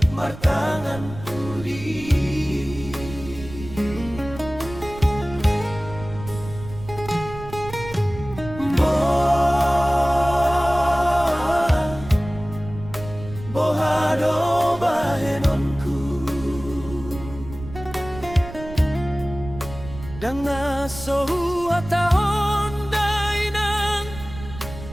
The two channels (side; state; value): right; noise; rumble, 13 dB below the sound